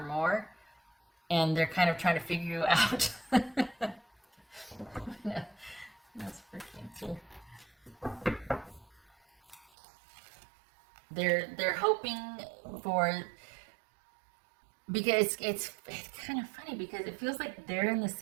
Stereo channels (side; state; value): left; drops out; at 9.7 s